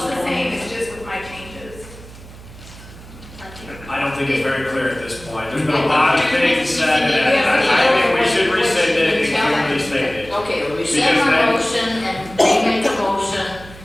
this the point? same, it's just with my changes. I don't think it's very clear at this point. There's been a lot of things said, and I think we should rescind it and clearly state it. Okay, we Because rescind our then- motion and remake a motion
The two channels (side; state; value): right; noise; hum, 18 dB below the sound